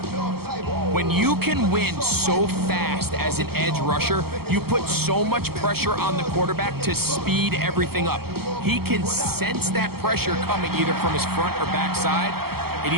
When you can win so fast as an edge rusher, you put so much pressure on the quarterback to speed everything up. He can sense that pressure coming either from his front or back side. It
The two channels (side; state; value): left; late; 0.95 ms